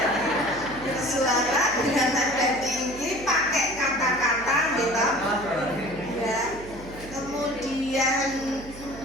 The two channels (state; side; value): noise; right; hum, 16 dB below the sound